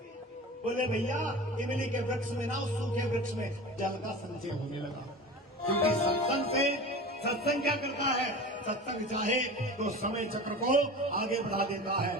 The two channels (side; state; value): both; normal; correlation 0.34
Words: बोले भैया इमली के वृक्ष में ना, उस सूखे वृक्ष में जल का संचय होने लगा। क्योंकि सत्संग क्या करता है, सत्संग चाहे तो समय चक्र को आगे बढ़ा देता है